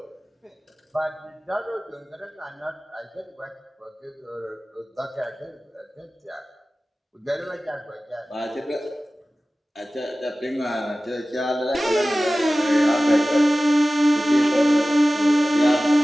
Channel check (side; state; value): both; normal; correlation 0.97